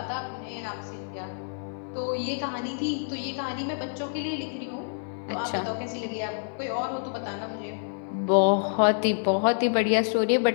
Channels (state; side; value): silent; right; 59 dB below the other